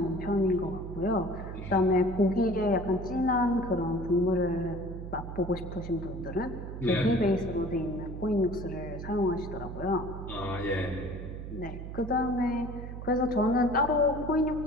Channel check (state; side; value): noise; right; hum, 8 dB below the sound